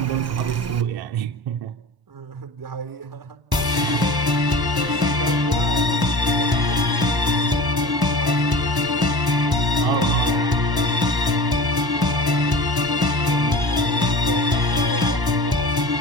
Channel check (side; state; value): left; late; 1.1 ms